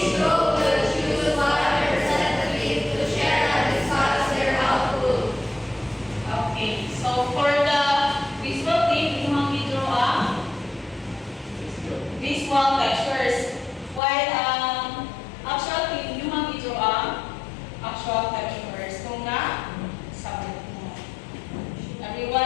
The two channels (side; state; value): right; drops out; at 14.0 s